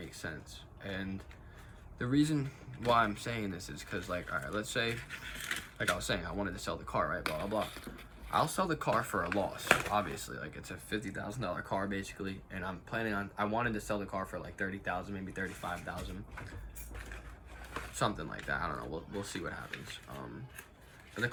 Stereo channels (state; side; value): identical; both; correlation 1.00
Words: sense. And the reason why I'm saying this is because, like, all right, let's say, like I was saying, I wanted to sell the car, right, blah, blah, blah. I'll sell the car for a loss, obviously. Like, it's a $50,000 car, basically, and I wanted to sell the car for, like, $30,000, maybe $35,000. Something like that. I don't know. We'll see what happens. But the